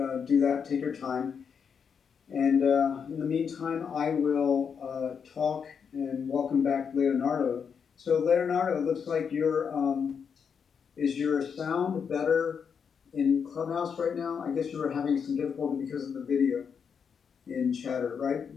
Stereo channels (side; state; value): right; quieter; 6.7 dB